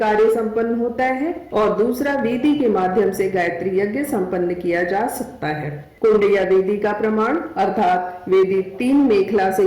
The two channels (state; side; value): identical; both; correlation 1.00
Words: संपन्न होता है और दूसरा वेदी के माध्यम से गायत्री यज्ञ संपन्न किया जा सकता है। कुंड या वेदी का प्रमाण अर्थात वेदी 3 मेखला से